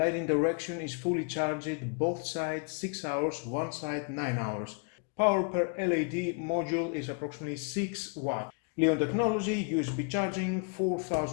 direction is fully charged, both sides 6 hours, one side 9 hours. Power per LED module is approximately 6 watts. Leon technology, USB charging,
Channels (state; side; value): quieter; right; 37.5 dB